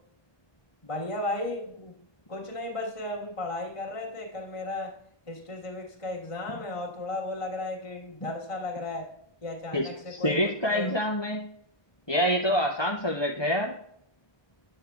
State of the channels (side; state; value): right; late; 1.2 ms